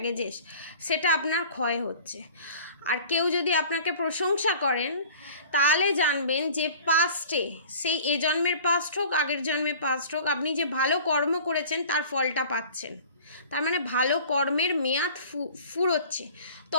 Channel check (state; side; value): inverted; both; correlation -0.45